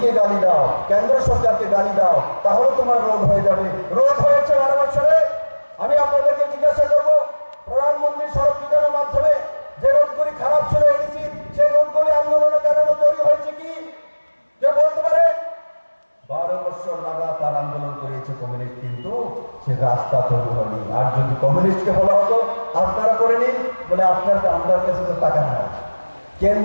গালি দাও, কেন্দ্র সরকারকে গালি দাও, তাহলে তোমার রোড হয়ে যাবে। রোড হয়েছে 12 বছরে। আমি আপনাদেরকে জিজ্ঞাসা করবো, প্রধানমন্ত্রী সড়ক যোজনার মাধ্যমে যে রোডগুলি খারাপ ছিল এডিসি, সেই রোডগুলি আন্দোলনের কারণে তৈরি হয়েছে কি কেউ বলতে পারে? 12 বছর লাগাতার আন্দোলন করেছে কমিউনিস্ট, কিন্তু সে রাস্তা তৈরি হয়নি। আর যদি কমিউনিস্টকে বলা হতো আপনারা করে নিন, বলে আপনার কাছে তো টাকা নাই,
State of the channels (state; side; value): inverted; both; correlation -1.00